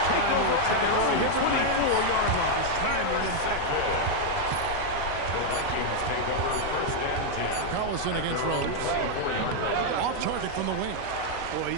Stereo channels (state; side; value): different; both; correlation 0.00